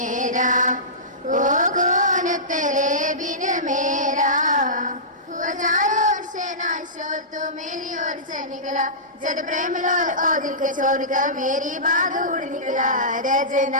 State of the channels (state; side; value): normal; both; correlation -0.20